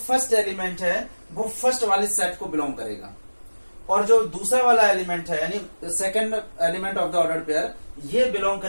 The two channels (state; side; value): inverted; both; correlation -1.00